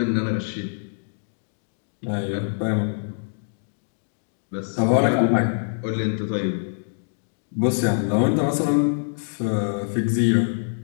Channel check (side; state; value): right; silent; digital silence